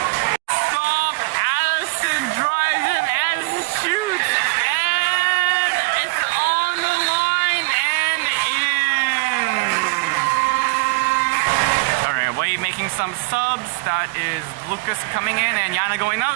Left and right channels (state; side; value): quieter; left; 29.1 dB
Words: Stop. Addison drives it and shoots. And it's on the line and in. Alright, Wade making some subs. That is Lucas coming in and Yana going